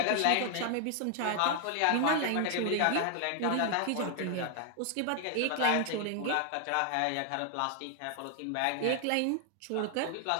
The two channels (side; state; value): both; different; correlation 0.00